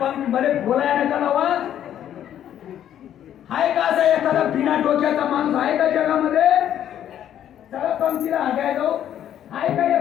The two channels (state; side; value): quieter; right; 10.6 dB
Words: बोलायला नका लावा. आहे का असा एखादा बिना डोक्याचा माणूस आहे का जगामध्ये? चला पंक्तीला आगाय जाऊ. आहे का